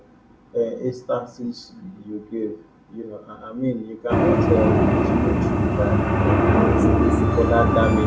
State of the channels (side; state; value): both; identical; correlation 1.00